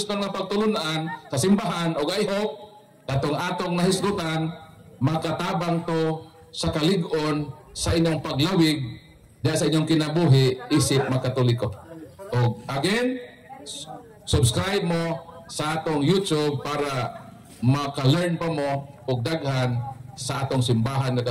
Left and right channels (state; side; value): identical; both; correlation 1.00